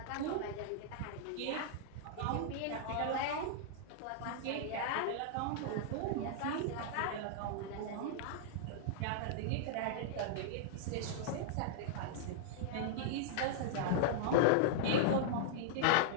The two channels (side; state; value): both; different; correlation -0.02